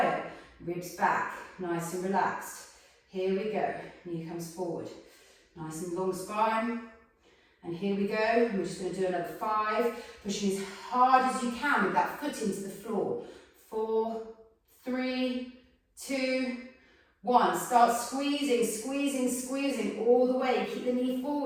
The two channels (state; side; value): identical; both; correlation 1.00